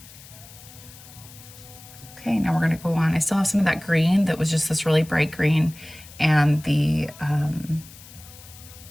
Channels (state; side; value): noise; left; hiss, 19 dB below the sound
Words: Okay, now we're gonna go on. I still have some of that green that was just this really bright green and the